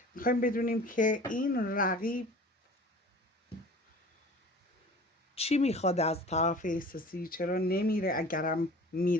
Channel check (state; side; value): normal; both; correlation 0.43